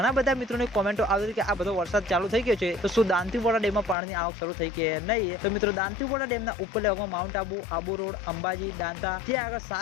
બધા મિત્રોની કોમેન્ટો આવી કે આ બધો વરસાદ ચાલુ થઈ ગયો છે તો શું દાંતીવાડા ડેમમાં પાણીની આવક શરૂ થઈ કે નહીં। તો મિત્રો દાંતીવાડા ડેમના ઉપરલા ભાગમાં માઉન્ટ આબુ, આબુ રોડ, અંબાજી, દાંતા ત્યાં આગળ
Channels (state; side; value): drops out; right; at 4.0 s